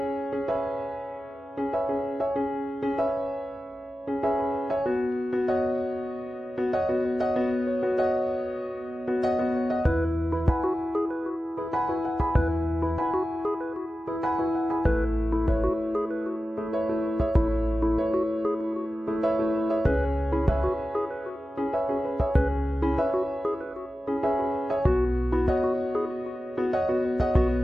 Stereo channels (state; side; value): normal; both; correlation 0.94